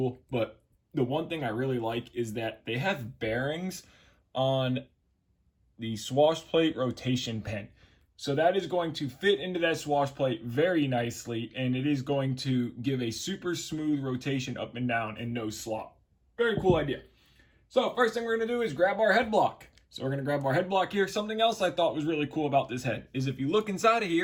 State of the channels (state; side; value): identical; both; correlation 1.00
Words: but the one thing I really like is that they have bearings on the swash plate rotation pin. So that is going to fit into that swash plate very nicely, and it is going to give a super smooth rotation up and down and no slop. Very cool idea. So first thing we're going to do is grab our head block. So we're going to grab our head block here. Something else I thought was really cool about this head is if you look inside of